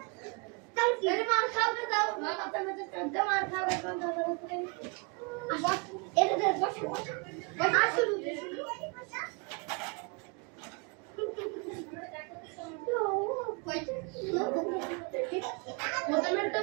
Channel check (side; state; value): left; quieter; 32.3 dB